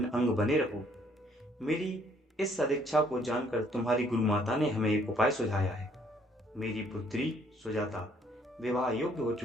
अंग बने रहो। मेरी इस सदिच्छा को जानकर तुम्हारी गुरु माता ने हमें एक उपाय सुझाया है। मेरी पुत्री सुजाता विवाह योग्य हो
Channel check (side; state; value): both; normal; correlation 0.64